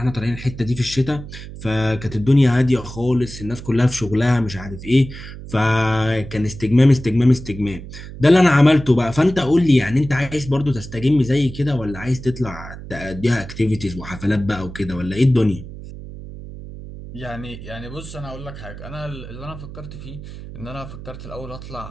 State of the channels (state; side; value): noise; right; hum, 13 dB below the sound